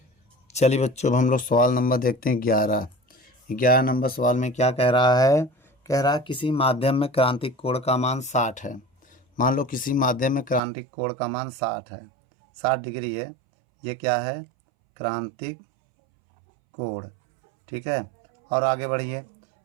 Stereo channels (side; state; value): left; drops out; at 10.6 s